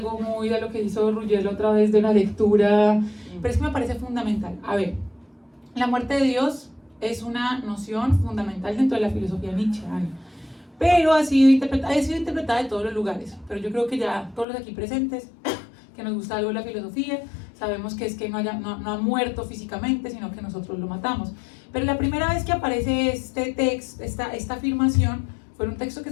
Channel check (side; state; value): right; drops out; at 14.5 s